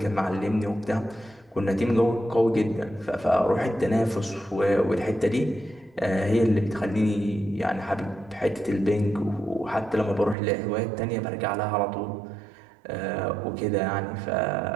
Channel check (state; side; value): drops out; left; at 10.4 s